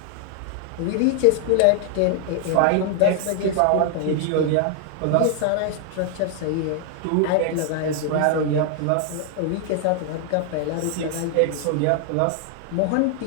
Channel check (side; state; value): both; different; correlation 0.00